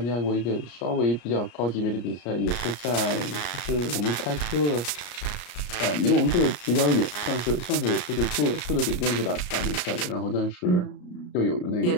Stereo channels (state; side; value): late; right; 34 ms